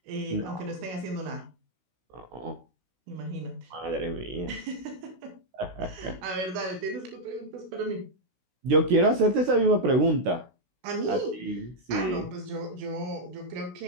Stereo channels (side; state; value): left; late; 16 ms